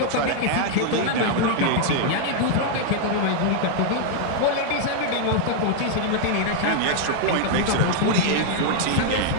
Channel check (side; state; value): both; different; correlation 0.00